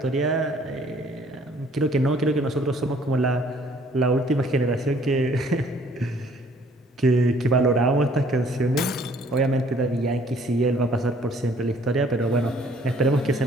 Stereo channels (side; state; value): both; normal; correlation 0.59